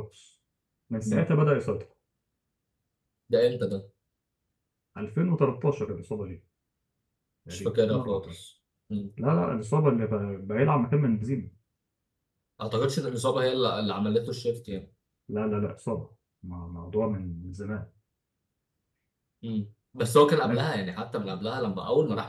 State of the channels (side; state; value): both; identical; correlation 1.00